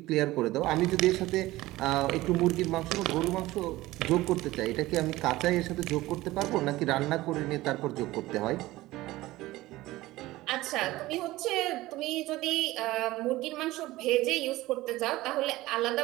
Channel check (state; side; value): quieter; left; 17.9 dB